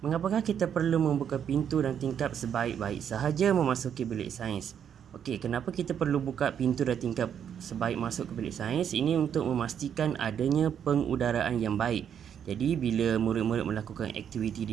Mengapakah kita perlu membuka pintu dan tingkap sebaik-baik sahaja memasuki bilik sains? Okey, kenapa kita perlu buka pintu dan tingkap sebaik masuk ke bilik sains? Ini untuk memastikan adanya pengudaraan yang baik. Jadi, bila murid-murid melakukan aktiviti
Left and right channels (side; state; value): left; quieter; 8.6 dB